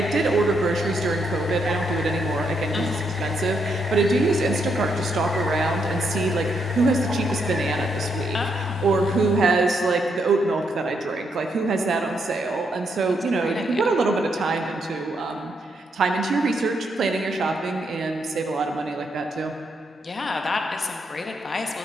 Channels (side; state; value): both; normal; correlation 0.78